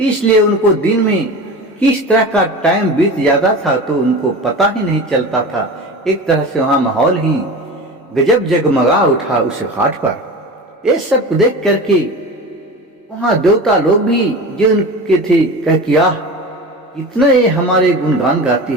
उनको दिन में किस तरह का टाइम बीत जाता था तो उनको पता ही नहीं चलता था। एक तरह से वहाँ माहौल ही गजब जगमगा उठा उस घाट पर। ये सब देख करके वहाँ देवता लोग भी जो उनके थे कह किया इतना ये हमारे गुणगान गाती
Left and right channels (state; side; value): normal; both; correlation 0.31